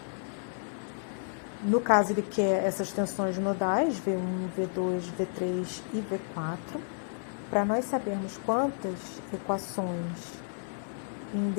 No caso, ele quer essas tensões nodais, V1, V2, V3 e V4. Para nós sabermos quantas equações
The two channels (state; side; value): silent; right; digital silence